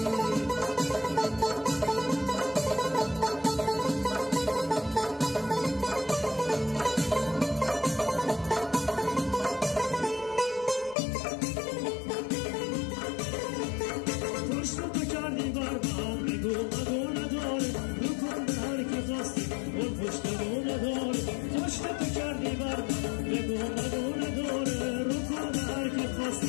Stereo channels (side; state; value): right; drops out; at 11.0 s